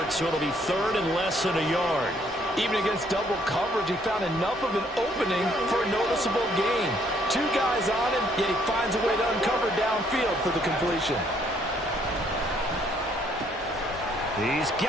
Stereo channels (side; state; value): both; normal; correlation 0.67